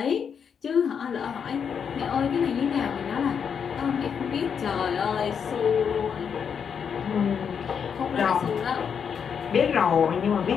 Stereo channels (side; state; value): right; quieter; 7.1 dB